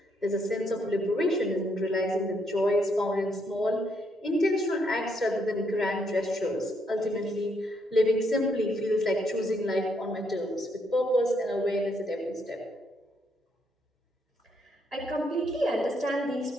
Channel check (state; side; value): normal; both; correlation 0.74